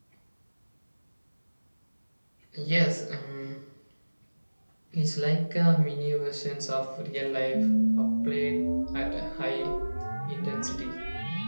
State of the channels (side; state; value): both; inverted; correlation -1.00